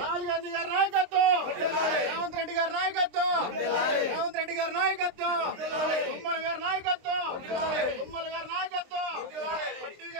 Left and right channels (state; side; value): late; left; 23 ms